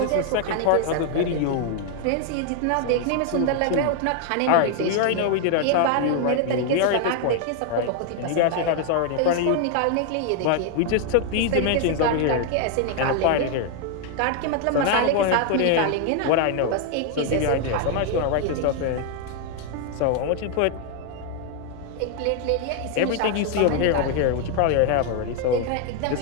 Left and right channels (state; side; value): different; both; correlation 0.00